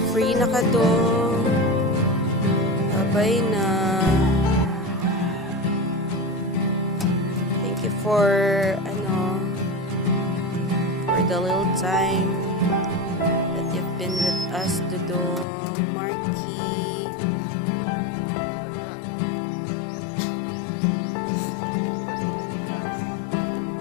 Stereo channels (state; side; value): drops out; right; at 15.5 s